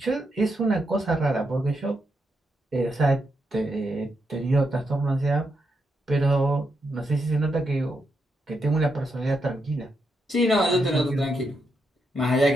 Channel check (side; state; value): both; normal; correlation 0.82